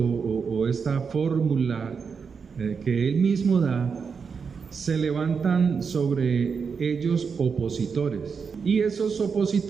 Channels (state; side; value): quieter; left; 5.8 dB